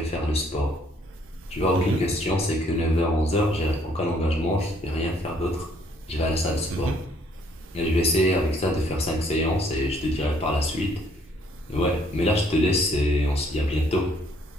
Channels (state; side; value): normal; both; correlation 0.64